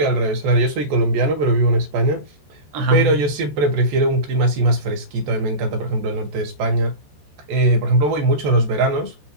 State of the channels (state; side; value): late; left; 14 ms